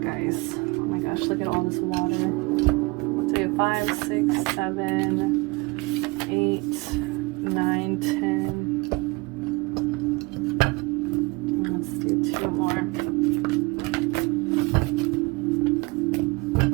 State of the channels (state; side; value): quieter; left; 25.6 dB